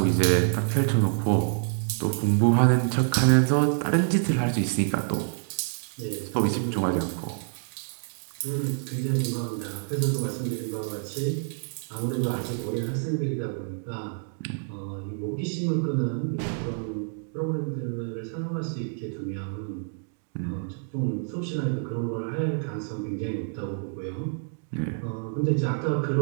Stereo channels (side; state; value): left; silent; 60 dB below the other